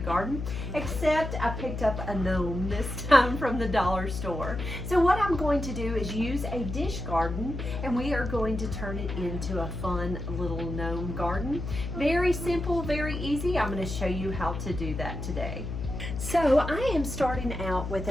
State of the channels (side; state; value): left; noise; hum, 6 dB below the sound